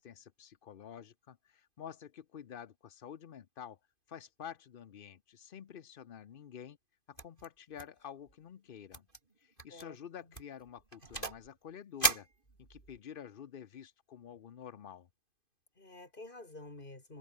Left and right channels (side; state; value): right; late; 2.5 ms